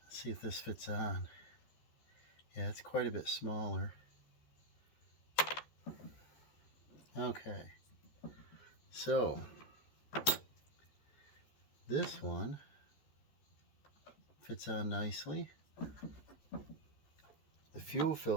Let's see if this fits on. Yeah, it's quite a bit smaller. Okay. So, this one fits on nicely. The fuel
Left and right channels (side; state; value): right; late; 14 ms